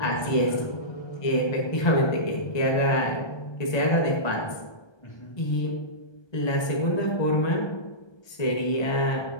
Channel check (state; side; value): late; right; 1.2 ms